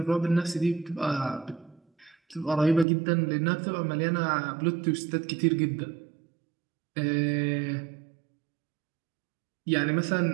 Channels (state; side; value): drops out; left; at 2.9 s